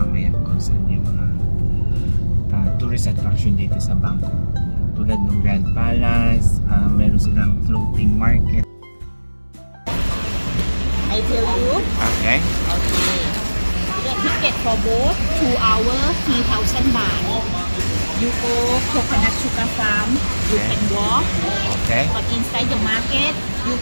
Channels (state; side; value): inverted; both; correlation -1.00